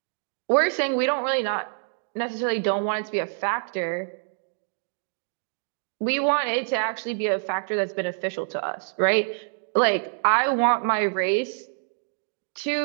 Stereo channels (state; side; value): silent; left; digital silence